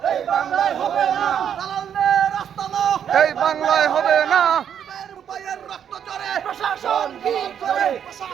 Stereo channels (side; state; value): left; quieter; 8.7 dB